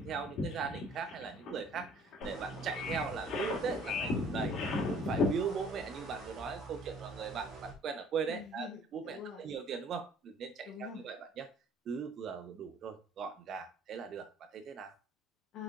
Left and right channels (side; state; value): both; normal; correlation 0.55